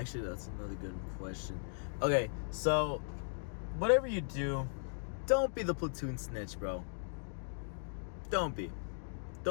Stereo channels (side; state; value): right; silent; digital silence